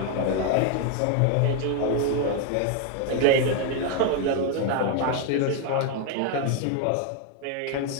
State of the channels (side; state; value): both; different; correlation 0.01